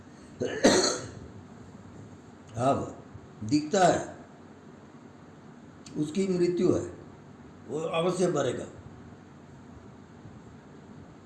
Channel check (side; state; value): both; identical; correlation 1.00